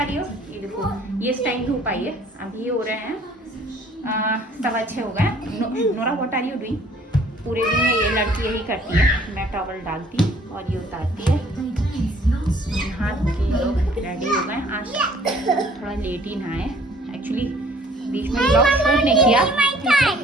रही हो? ये देखो, ये टाइम धूप आई है, अभी हो रहे हैं 6:15 हो गए। Nora what are you doing? पूरे दिन में ये लड़की यही करती है, मैं टॉवल डालती और ये उतारती है। हाथ के लोग रेडी हो गए। आज थोड़ा लेट ही नहाए, एक्चुअली बीच में ब्लॉग शूट नहीं किया।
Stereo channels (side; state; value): both; normal; correlation 0.56